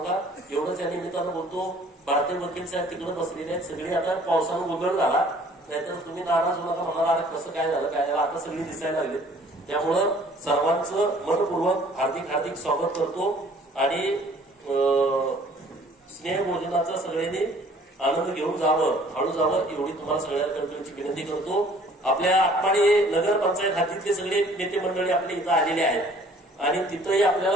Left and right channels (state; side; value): normal; both; correlation 0.55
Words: एवढंच या निमित्तानं बोलतो. भारतीय वकील साहेब तिकडे बसलेले आहेत सगळे. आता पावसानं गोंधळ झाला, नाहीतर तुम्ही नाराज होऊ नका, म्हणाला अरे कसं काय झालं काय झालं, आता सगळी दिसायला लागली. त्यामुळं सर्वांचं मनपूर्वक हार्दिक हार्दिक स्वागत करतो आणि स्नेहभोजनाचा सगळ्यांनी आनंद घेऊन जावं, हळू जावं एवढी तुम्हाला सगळ्यांकडे विनंती करतो. आपल्या आटपाडी नगरपंचायत हातीतले सगळे नेते मंडळी आपल्या इथं आलेले आहेत आणि तिथंही